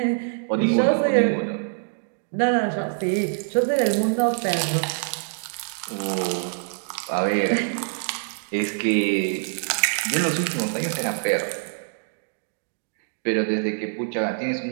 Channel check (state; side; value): silent; left; digital silence